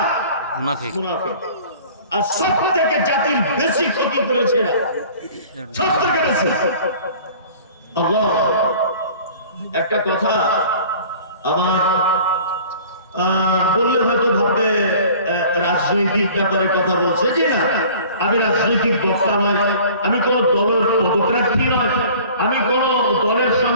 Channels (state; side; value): inverted; both; correlation -0.47